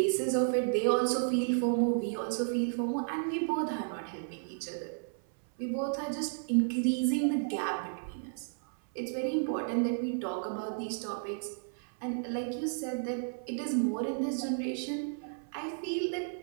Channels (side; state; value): left; silent; 56 dB below the other